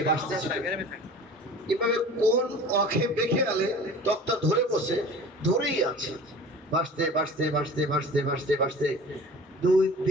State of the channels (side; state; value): both; normal; correlation 0.42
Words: ভাসতেছে। এভাবে কোন অখে বেঁকে গেলে তক্তা ধরে বসে, ধরেই আছে, ভাসতে ভাসতে ভাসতে ভাসতে ভাসতে ভাসতে 2